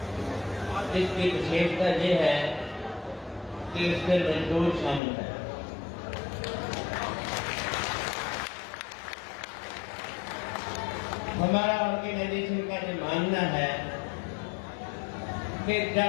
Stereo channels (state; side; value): drops out; right; at 5.0 s